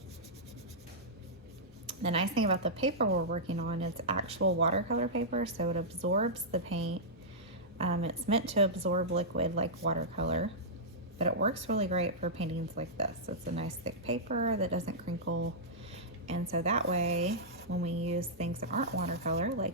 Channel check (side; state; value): both; normal; correlation -0.12